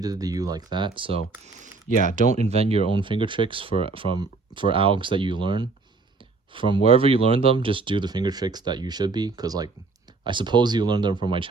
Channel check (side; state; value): left; quieter; 4.0 dB